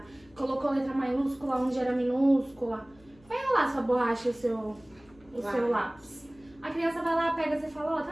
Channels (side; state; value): left; noise; hum, 27 dB below the sound